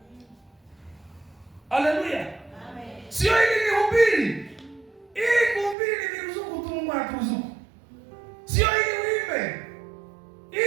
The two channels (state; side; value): drops out; left; at 5.8 s